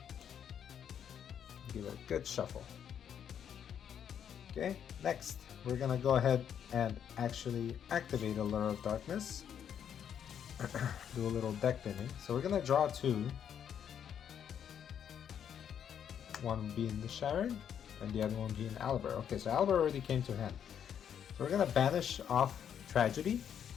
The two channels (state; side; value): quieter; right; 8.7 dB